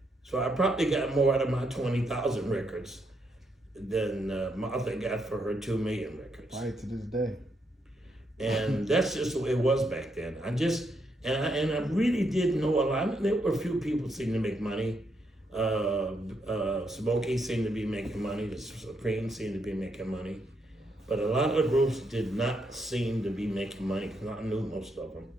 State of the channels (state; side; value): normal; both; correlation 0.78